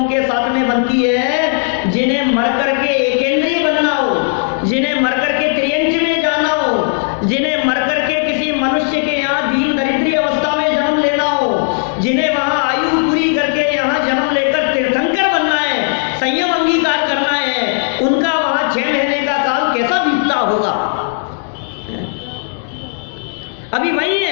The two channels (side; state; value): right; silent; digital silence